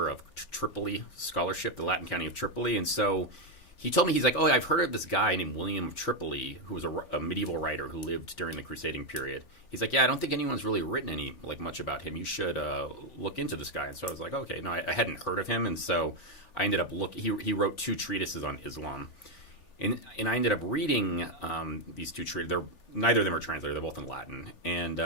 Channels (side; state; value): right; late; 3.4 ms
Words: of Tripoli scholarship, the Latin county of Tripoli. And so he told me, he's like, oh, I've heard of this guy named William of Tripoli, who was a medieval writer who lived during the crusading period. He's like, yeah, I don't think anyone's really written much about him. You should look into this guy. And so I was like, okay, no, I hadn't heard of him. And so I ended up looking. He wrote 2 treatises on Islam. And I ended up reading these 2 treatises. Neither of them are translated. They're both in Latin.